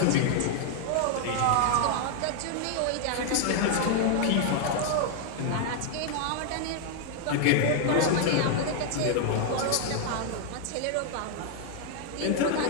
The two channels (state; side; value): different; both; correlation 0.00